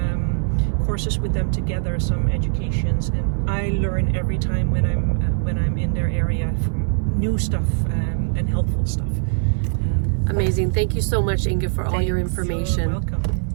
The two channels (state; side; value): silent; left; digital silence